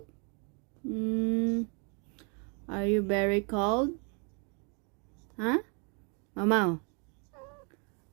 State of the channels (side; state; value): left; quieter; 37.0 dB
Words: Are you very cold? Huh? Mama?